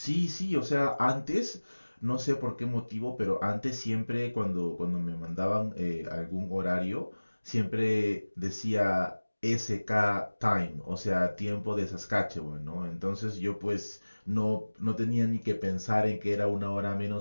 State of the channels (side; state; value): both; inverted; correlation -1.00